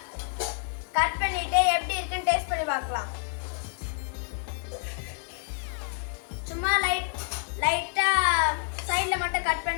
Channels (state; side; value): silent; right; 59 dB below the other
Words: கட் பண்ணிட்டு எப்படி இருக்குன்னு டேஸ்ட் பண்ணி பார்க்கலாம். சும்மா லைட்டா சைடில் மட்டும் கட்